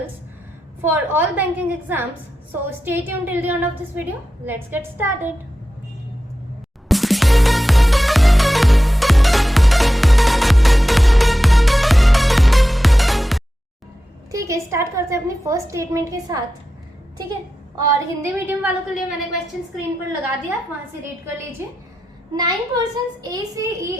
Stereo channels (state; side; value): normal; both; correlation 0.91